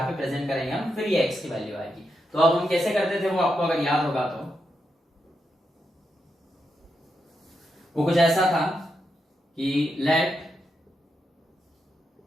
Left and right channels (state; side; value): normal; both; correlation 0.84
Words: पे प्रेजेंट करेंगे हम, फिर ये x की वैल्यू आएगी। तो अब हम कैसे करते थे वो आपको अगर याद होगा तो वो कुछ ऐसा था कि let